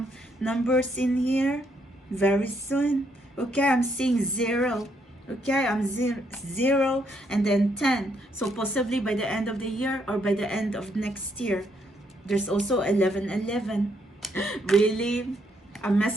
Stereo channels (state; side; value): normal; both; correlation 0.74